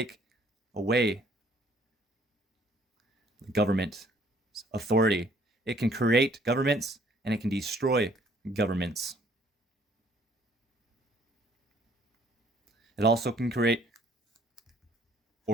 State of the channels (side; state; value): both; normal; correlation 0.61